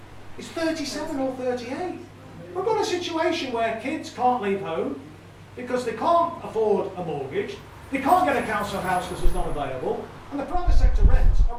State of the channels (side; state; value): both; identical; correlation 1.00